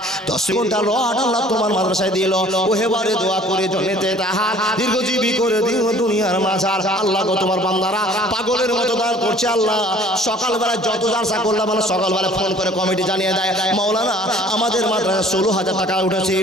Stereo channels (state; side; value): normal; both; correlation 0.52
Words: 10 ঘন্টা রড আল্লাহ তোমার মাদ্রাসায় দিল। ও হেবারে দোয়া করে জন্নতে তাহার দীর্ঘজীবী করে দিও দুনিয়ার মাঝার। আল্লাহ গো, তোমার বান্দারা পাগলের মতো দান করছে। আল্লাহ সকালবেলা যত জালসা করলাম, মানে সকালবেলা ফোন করে কমিটি জানিয়ে দেয়, মাওলানা আমাদের মাদ্রাসা 16,000 টাকা উঠেছে,